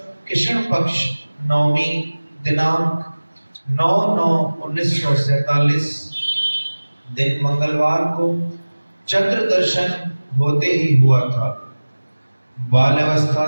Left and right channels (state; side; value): inverted; both; correlation -1.00